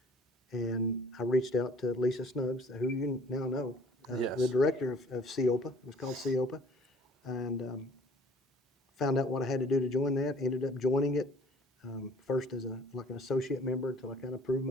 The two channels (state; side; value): normal; both; correlation 0.52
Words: And I reached out to Lisa Snuggs, who you now know, Yes. the director of CEOPA. It was called CEOPA. And found out what I had to do to join that. Ended up joining it first as an associate member until I kind of proved